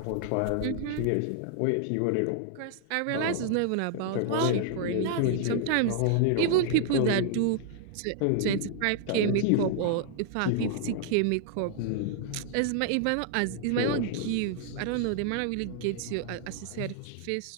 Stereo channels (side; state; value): both; different; correlation 0.00